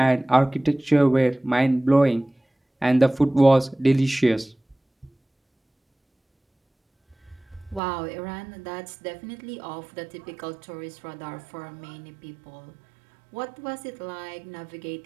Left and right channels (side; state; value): left; drops out; at 7.8 s